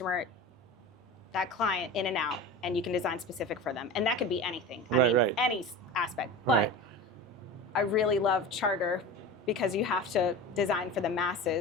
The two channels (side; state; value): both; normal; correlation 0.31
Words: that client in and out, and you can design specific for them. And that could be anything. I mean, any aspect. But I really love charter because you have to design for the